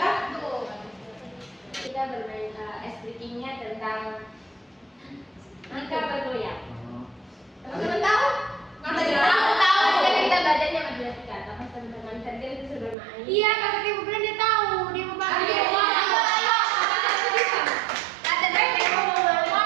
tuh. Kita bermain SDG-nya tentang angka bergoyang. Teman-teman tahu? Tahu. Jadi kita belajarnya matematika. Tapi teman-teman tadi itu sudah main. Iya, kata Ibu bilang dia tahu. Dia mau pakai. Ayo. Kata dia mau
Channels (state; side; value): drops out; left; at 13.0 s